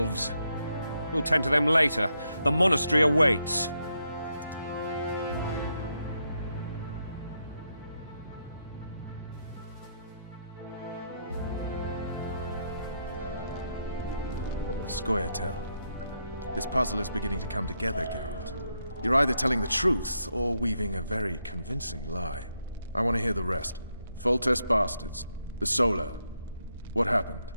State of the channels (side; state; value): both; inverted; correlation -0.80